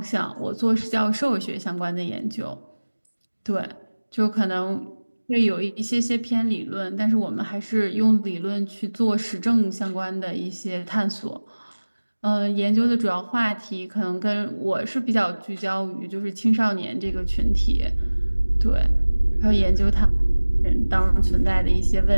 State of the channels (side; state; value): both; inverted; correlation -1.00